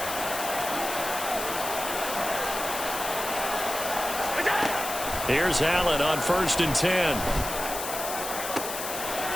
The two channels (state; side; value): noise; left; hiss, 6 dB below the sound